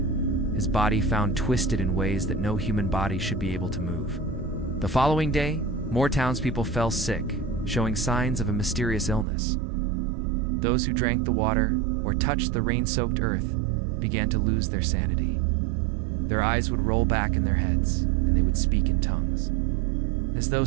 his body found twisted in ways that no human body should be able to move. The following day, more townspeople fell sick, showing signs of a mysterious illness. Those who drank the water or touched the rain-soaked earth began to lose their sanity. Their eyes would roll back in their heads, and they would speak in tongues, as though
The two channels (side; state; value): left; drops out; at 9.2 s